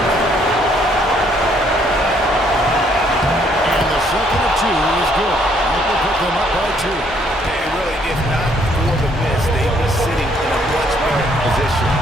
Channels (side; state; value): both; normal; correlation 0.67